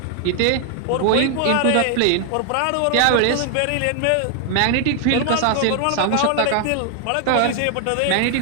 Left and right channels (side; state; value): both; different; correlation 0.00